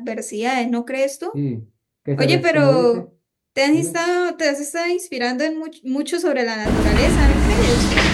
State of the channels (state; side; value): identical; both; correlation 1.00